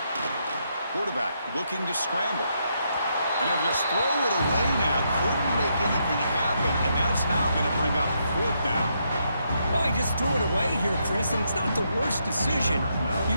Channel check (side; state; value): both; inverted; correlation -0.78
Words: Quarterback looking to scramble. And he'll just throw it away now. Couldn't make anything happen, and that's now going to bring up 4th down. Well, he just threw it away here, Chris, and it's not the worst decision. You